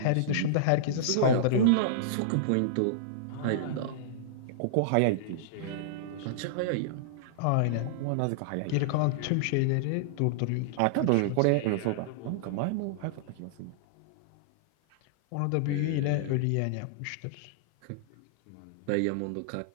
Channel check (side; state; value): both; different; correlation -0.02